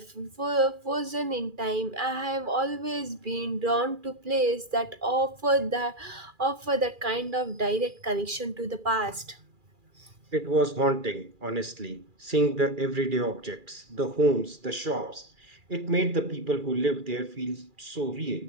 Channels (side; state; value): left; late; 2.4 ms